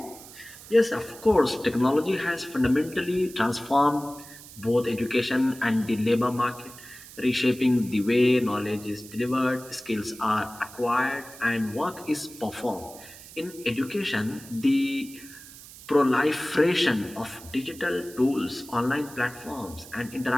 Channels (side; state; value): right; noise; hiss, 17 dB below the sound